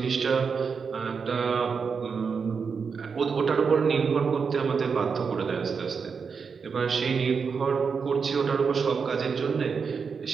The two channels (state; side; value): quieter; left; 5.7 dB